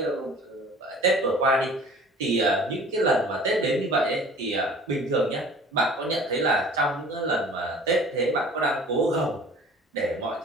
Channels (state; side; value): normal; both; correlation 0.47